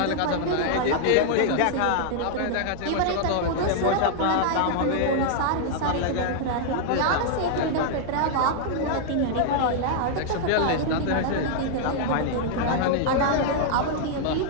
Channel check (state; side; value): different; both; correlation -0.01